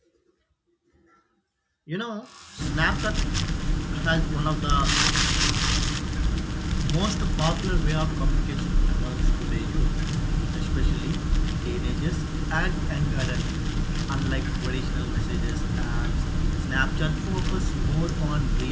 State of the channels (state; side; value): identical; both; correlation 1.00